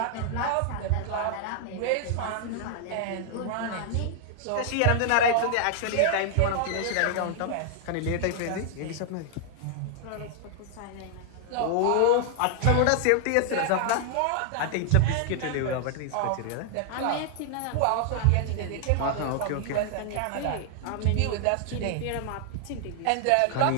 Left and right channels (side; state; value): both; different; correlation 0.00